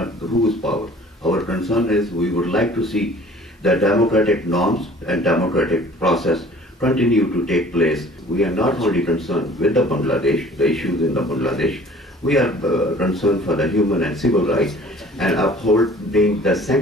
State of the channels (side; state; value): both; normal; correlation 0.50